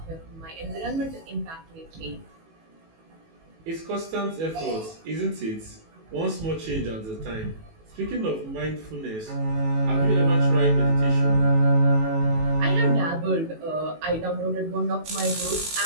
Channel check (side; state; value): left; late; 18 ms